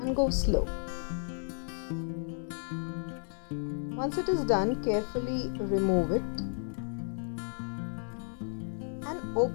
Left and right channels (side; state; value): right; silent; digital silence